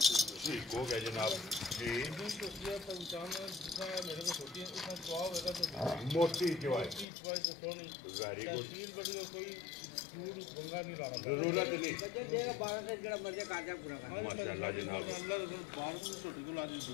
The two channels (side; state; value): right; drops out; at 7.1 s